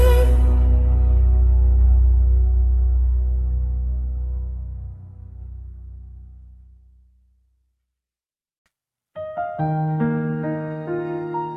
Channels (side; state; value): both; identical; correlation 1.00